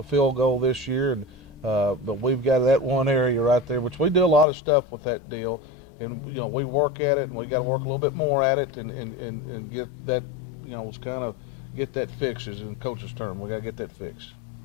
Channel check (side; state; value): right; drops out; at 4.5 s